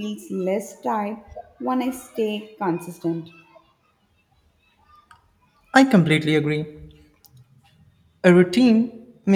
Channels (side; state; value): both; identical; correlation 1.00